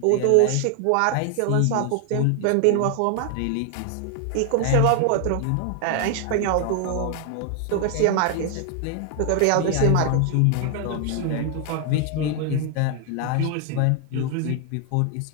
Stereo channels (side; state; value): both; different; correlation 0.00